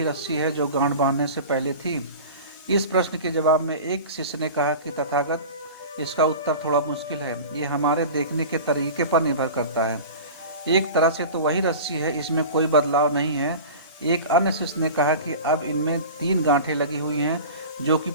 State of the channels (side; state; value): both; inverted; correlation -0.35